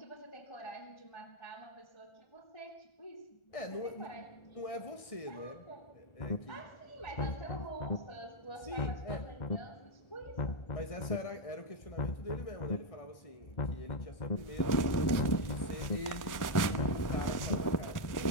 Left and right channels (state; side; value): late; right; 1.4 ms